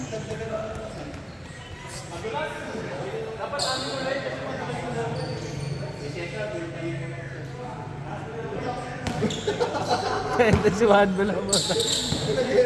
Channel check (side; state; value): both; identical; correlation 1.00